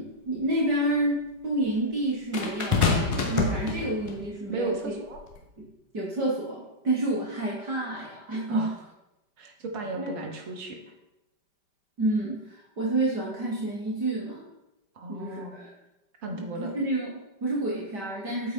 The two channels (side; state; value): left; late; 5.1 ms